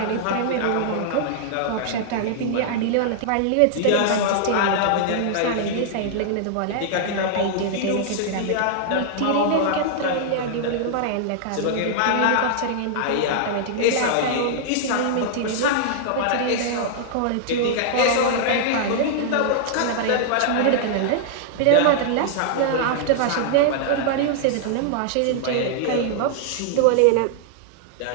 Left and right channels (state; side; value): different; both; correlation -0.01